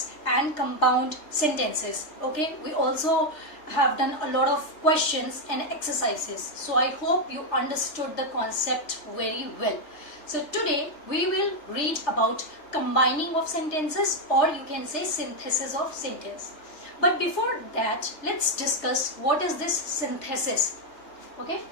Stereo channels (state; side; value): late; right; 3.3 ms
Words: and compound sentences. Okay, we also have done a lot of questions and exercises. So I hope you understood the concept very well. So today we will read about combining of sentences, or you can say synthesis of sentence. But before that, let's discuss what is this synthesis. Okay,